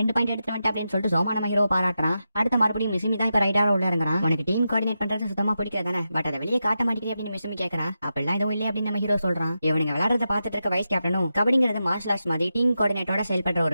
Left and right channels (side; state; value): both; inverted; correlation -0.89